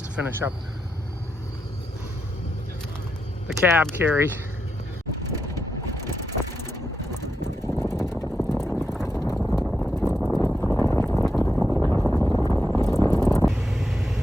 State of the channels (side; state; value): both; normal; correlation 0.85